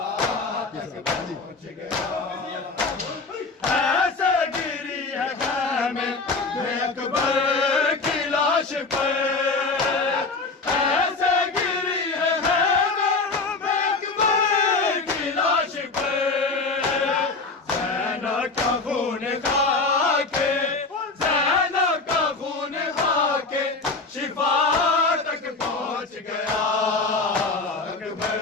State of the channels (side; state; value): right; quieter; 3.8 dB